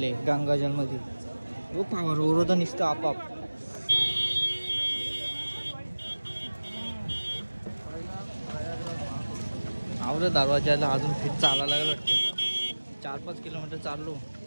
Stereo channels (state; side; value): inverted; both; correlation -1.00